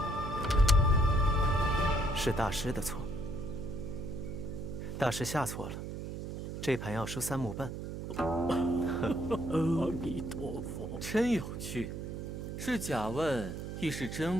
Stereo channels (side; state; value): right; noise; hum, 7 dB below the sound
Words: 是大师的错。大师下错了，这盘要输3目半。阿弥陀佛，真有趣，是假问亦是真